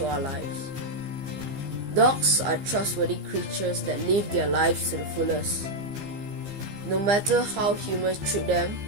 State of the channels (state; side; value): late; left; 15 ms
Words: our lives. Dogs are trustworthy creatures that live their lives to the fullest. No matter how humans treat them,